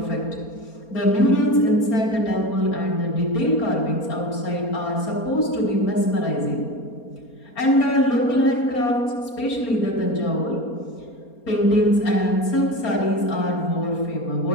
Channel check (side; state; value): right; late; 4.3 ms